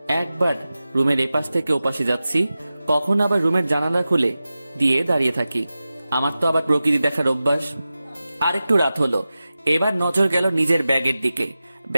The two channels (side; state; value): both; inverted; correlation -0.94